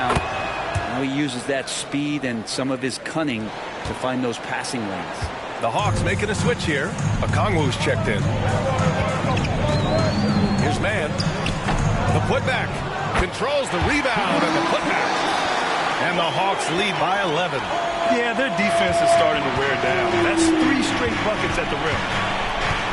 Now he uses that speed and some of his cunning to find those passing lanes. The Hawks making a switch here. Okongwu's checked in. Here's Mann. The putback. Controls the rebound and the putback. And the Hawks lead by 11. Yeah, their defense is starting to wear down. That's 3 straight buckets at the rim.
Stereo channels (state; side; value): identical; both; correlation 1.00